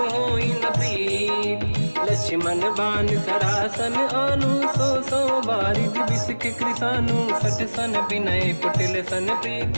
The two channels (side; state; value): both; inverted; correlation -1.00